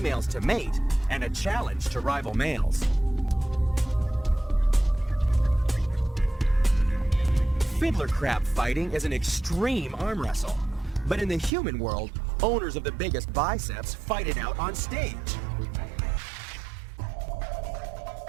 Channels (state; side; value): drops out; left; at 11.5 s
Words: to mate and a challenge to rival males. Fiddler crab fighting is an extreme arm wrestle, but in the human world, owners of the biggest biceps fight it out on stage.